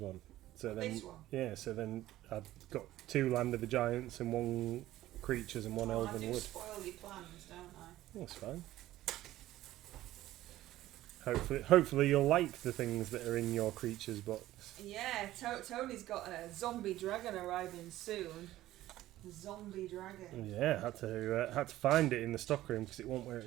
one." So then, This one. yeah, so then I've got 2 Land of the Giants and 1 creatures and 1 I Elven do Wood. spoil your plans, don't I? That's fine. Hopefully you'll like the things that are in your creatures box. Yeah, Tony's got a zombie dragon arriving soon. Zombie dragon. Yeah, had to find it in the stockroom because it wasn't where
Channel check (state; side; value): quieter; left; 15.0 dB